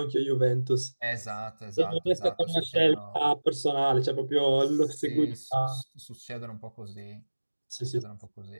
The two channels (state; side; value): inverted; both; correlation -1.00